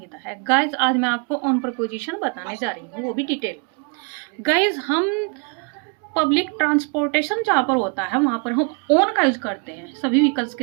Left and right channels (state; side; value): quieter; left; 34.9 dB